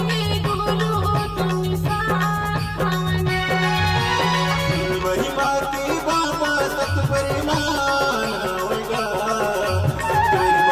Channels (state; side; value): identical; both; correlation 1.00